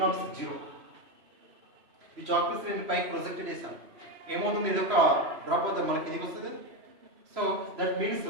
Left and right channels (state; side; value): late; left; 3.0 ms